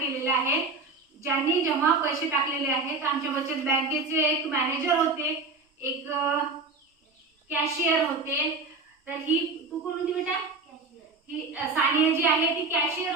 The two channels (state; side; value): quieter; left; 3.7 dB